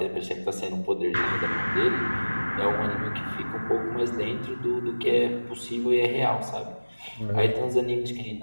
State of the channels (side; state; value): both; inverted; correlation -1.00